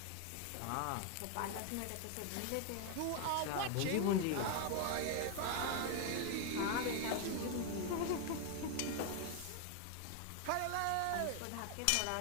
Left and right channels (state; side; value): different; both; correlation 0.00